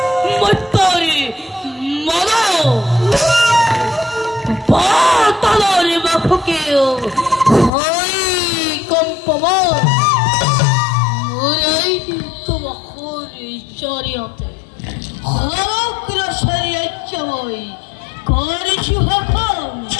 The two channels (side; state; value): right; drops out; at 7.7 s